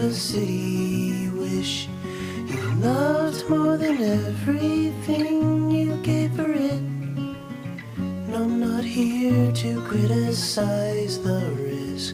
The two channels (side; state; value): both; identical; correlation 1.00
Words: city wish. You loved more than everything you gave for it. No, I'm not here to criticize the